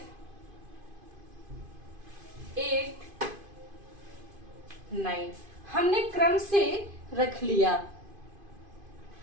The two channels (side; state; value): left; late; 2.5 ms